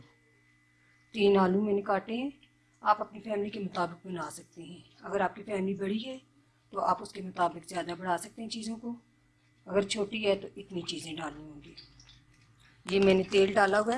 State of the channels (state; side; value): identical; both; correlation 1.00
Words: 3 आलू मैंने काटे हैं। आप अपनी फैमिली के मुताबिक बना सकते हैं। अगर आपकी फैमिली बड़ी है तो आप उसके मुताबिक ज़्यादा बढ़ा सकते हैं चीज़ों को, अगर छोटी है तो इतनी चीज़ें डालनी होंगी। ये मैंने तेल डाला हुआ